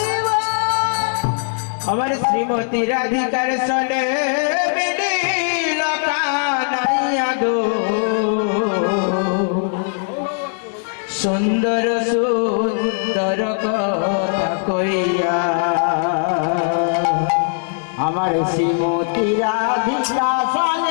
বল। আমার শ্রীমতী রাধিকার সনে মিলিল কানাইয়া গো, সুন্দর সুন্দর কথা কইয়া। আমার শ্রীমতী রাধিকা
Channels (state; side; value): silent; right; 66 dB below the other